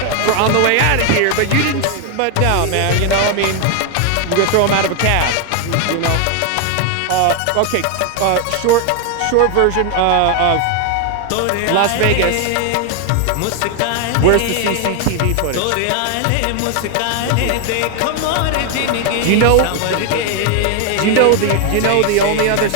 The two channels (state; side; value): different; both; correlation 0.01